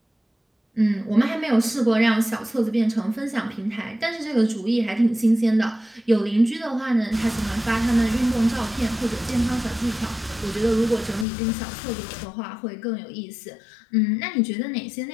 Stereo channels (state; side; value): drops out; right; at 11.2 s